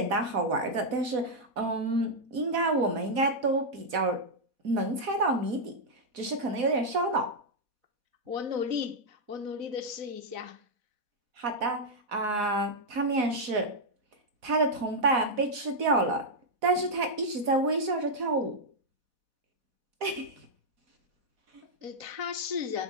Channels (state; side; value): late; left; 4.1 ms